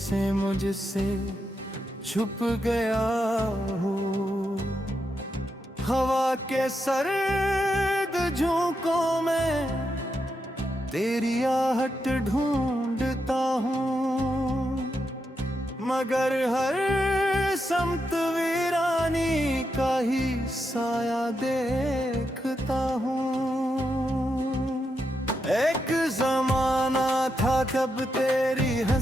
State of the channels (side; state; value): both; normal; correlation 0.84